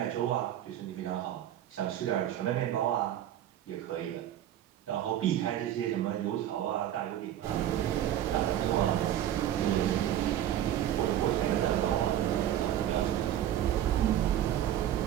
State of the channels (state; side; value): quieter; left; 11.6 dB